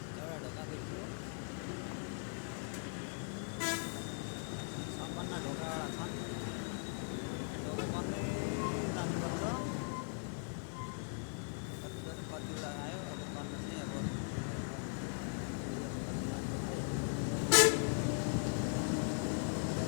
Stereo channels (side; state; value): right; silent; 51 dB below the other